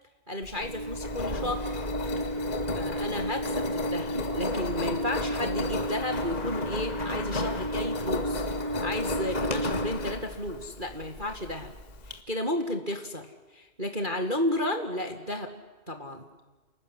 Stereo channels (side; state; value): left; late; 2.4 ms